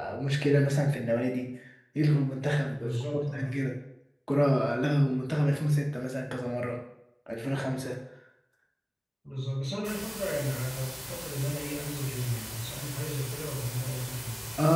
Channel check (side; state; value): both; identical; correlation 1.00